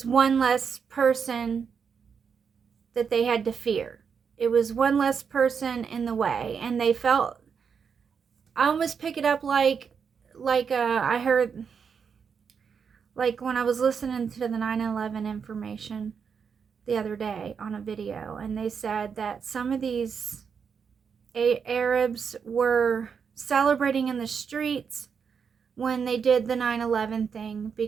one less person that they had to fear. It was one less person in the way. And they felt, I almost pick it up like I heard, like when I was listening to the 9/11 information the other day on a video, and they said that some of these Arabs were celebrating in the streets when they did the 9/11 thing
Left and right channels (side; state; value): left; quieter; 6.4 dB